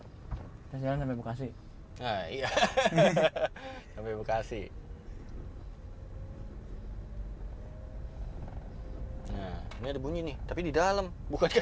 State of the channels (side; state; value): both; identical; correlation 1.00